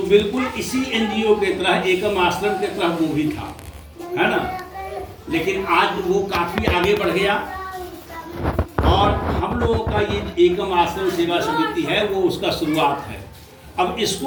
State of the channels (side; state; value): both; identical; correlation 1.00